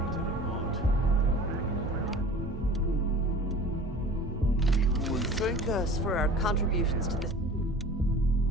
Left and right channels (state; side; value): normal; both; correlation 0.42